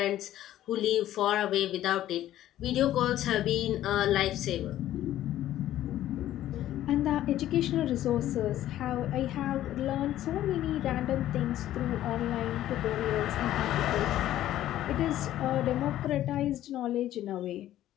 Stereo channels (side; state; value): right; quieter; 13.1 dB